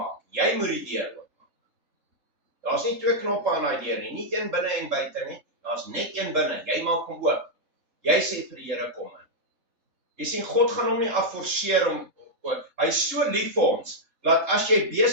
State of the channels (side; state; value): left; late; 3.7 ms